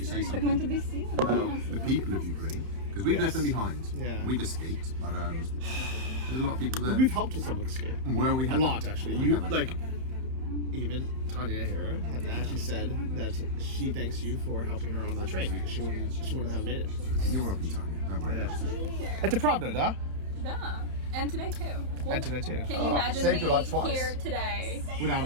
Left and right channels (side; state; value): left; late; 31 ms